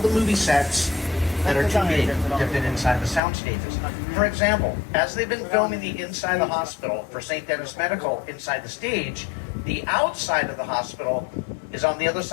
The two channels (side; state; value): right; drops out; at 3.2 s